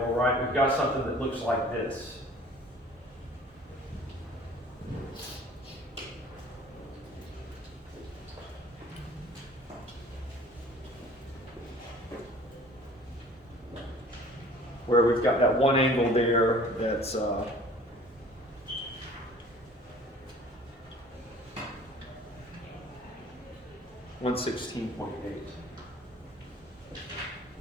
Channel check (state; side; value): normal; both; correlation 0.49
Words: right, we've got something that looks like this. Where we've got that one angle there that's 116.8.